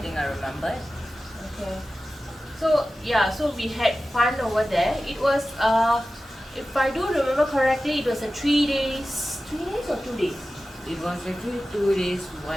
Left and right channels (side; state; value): both; normal; correlation 0.94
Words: I remember. Okay. So yeah, so we had fun over there. It was if I do remember correctly, it was a 3 days or 2 days? It was actually 2 days,